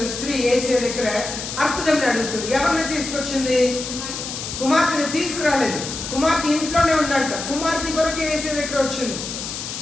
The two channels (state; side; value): noise; left; hiss, 7 dB below the sound